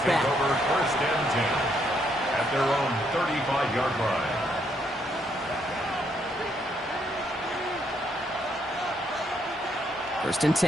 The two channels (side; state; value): both; normal; correlation 0.73